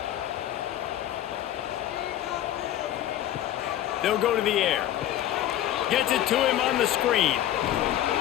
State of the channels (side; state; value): right; quieter; 12.3 dB